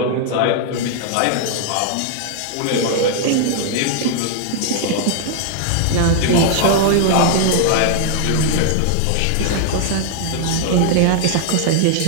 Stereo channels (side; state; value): both; different; correlation 0.00